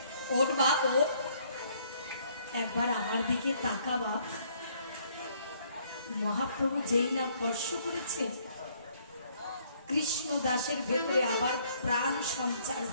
ওঠ বাপ, ওঠ, একবার আমার দিকে তাকা বাপ। মহাপ্রভু যেই না স্পর্শ করেছে, কৃষ্ণ দাসের ভেতরে আবার প্রাণ সঞ্চার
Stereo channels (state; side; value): inverted; both; correlation -0.64